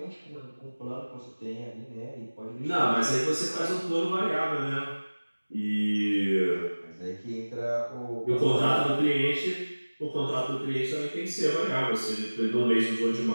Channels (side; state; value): both; inverted; correlation -1.00